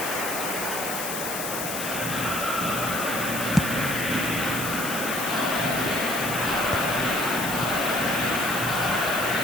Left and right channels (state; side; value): noise; left; hiss, 4 dB below the sound